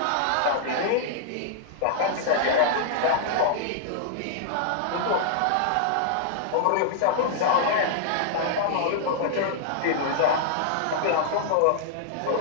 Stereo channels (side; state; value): both; different; correlation -0.01